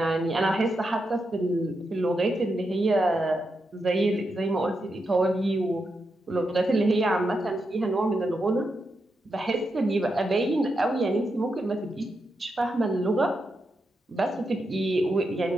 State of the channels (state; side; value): normal; both; correlation 0.85